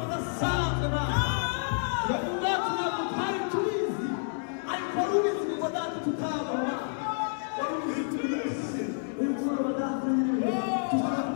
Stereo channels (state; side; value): silent; right; digital silence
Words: udasanzwe nawe ubwacu ntabwo twari tubizi ariko wari ubizi ngo data tutabona wari ubizi turi munsi uyu mugoroba data nyine